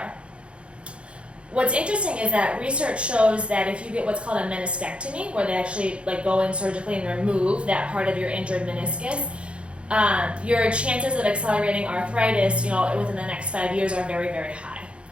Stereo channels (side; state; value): left; late; 0.059 ms